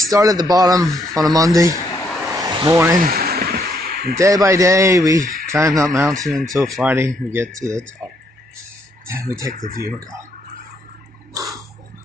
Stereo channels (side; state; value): both; normal; correlation 0.72